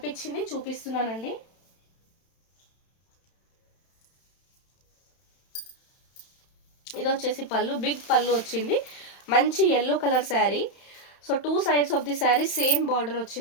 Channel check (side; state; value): right; late; 31 ms